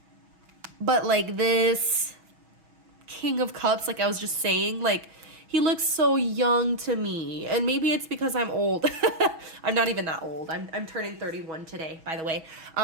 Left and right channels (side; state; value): left; late; 6.2 ms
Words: but like this King of Cups, like I was just saying, like, he looks so young to me, and maybe it's because I'm old. I'm not even that old. I'm turning 31 today, by the way.